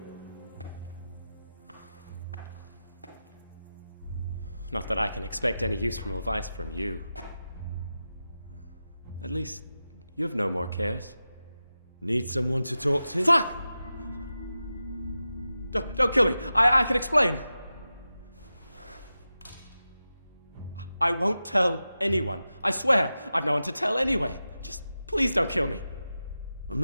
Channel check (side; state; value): both; inverted; correlation -0.93